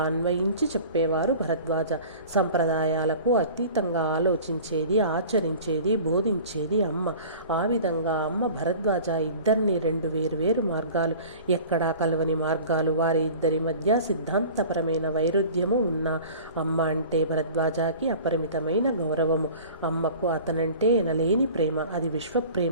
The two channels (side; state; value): both; inverted; correlation -0.42